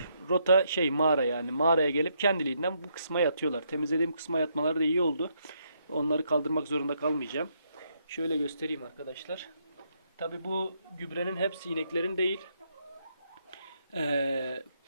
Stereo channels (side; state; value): both; inverted; correlation -0.76